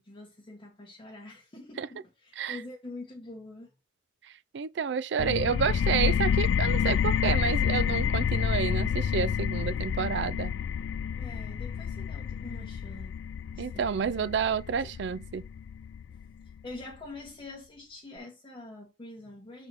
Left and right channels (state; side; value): normal; both; correlation 0.24